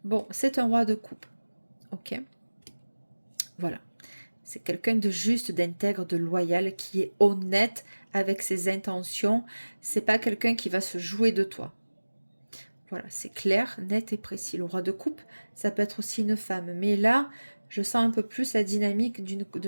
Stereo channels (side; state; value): both; inverted; correlation -1.00